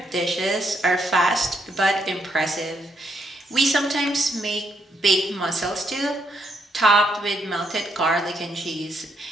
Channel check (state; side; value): normal; both; correlation 0.76